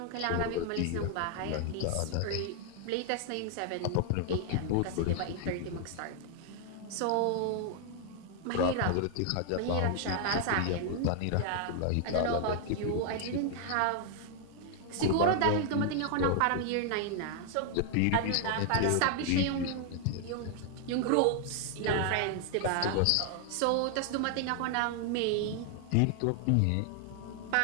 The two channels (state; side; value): different; both; correlation 0.00